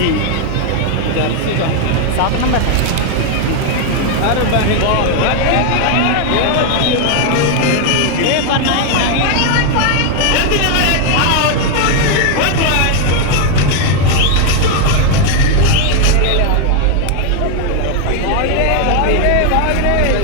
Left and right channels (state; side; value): different; both; correlation 0.01